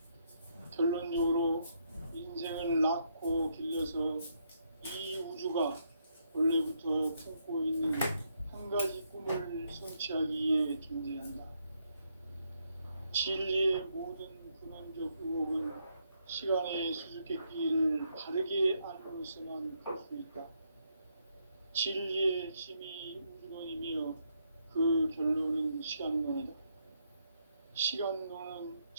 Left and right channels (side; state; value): both; inverted; correlation -0.76